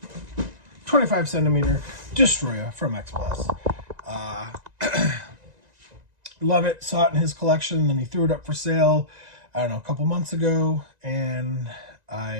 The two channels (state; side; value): late; left; 1.9 ms